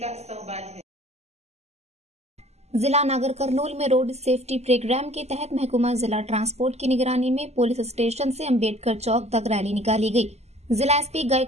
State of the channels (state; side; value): late; left; 0.31 ms